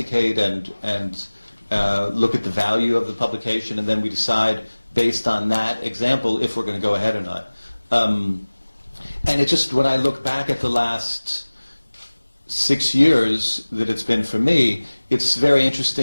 and look at the value of the publication, and then we decide based on that example if we're going to go ahead or not. And it just, when I look back at the last 6 years that it's been for me, it's very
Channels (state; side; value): inverted; both; correlation -1.00